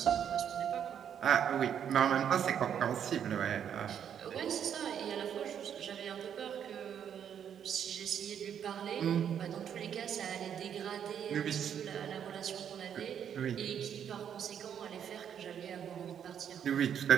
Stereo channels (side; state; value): left; quieter; 8.7 dB